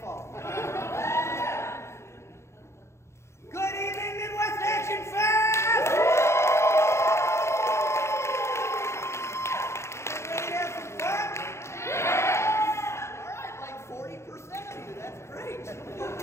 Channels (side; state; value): right; late; 0.13 ms